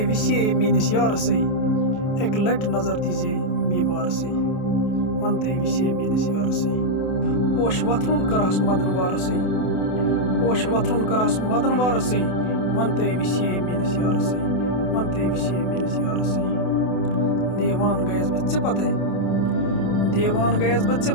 وِسے میٲنِس یارسٕے اَکہِ لٹہِ نظر دیٖزے بیمارسٕے ون تُہۍ وِسے میٲنِس یارسٕے پوش وۄتھرُن کرہس مدن وارسٕے پوش وۄتھرُن کرہس مدن وارسٕے ون تُہۍ وِسے میٲنِس یارسٕے ون تُہۍ وِسے میٲنِس یارسٕے دیوان گٔیَس بہٕ ژےٚ پتے دیوان گٔیَس بہٕ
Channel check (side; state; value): right; late; 28 ms